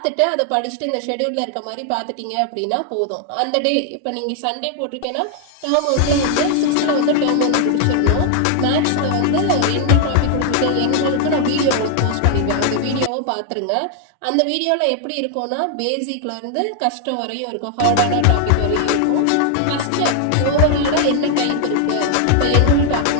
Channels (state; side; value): different; both; correlation 0.00